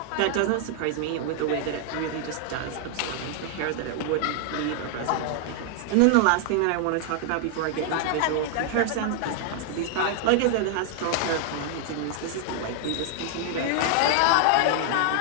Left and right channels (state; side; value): different; both; correlation 0.00